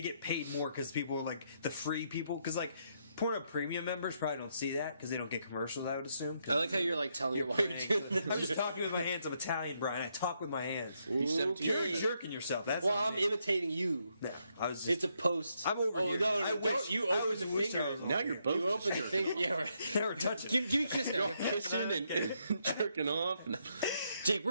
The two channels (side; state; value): both; inverted; correlation -0.77